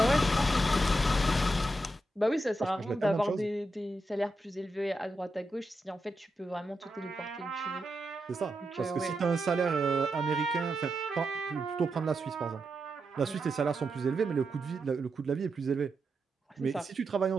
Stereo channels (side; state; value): both; normal; correlation 0.86